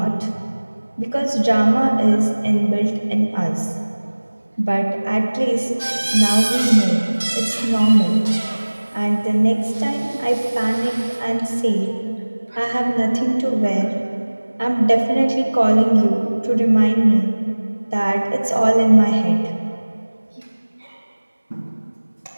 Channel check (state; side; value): inverted; both; correlation -1.00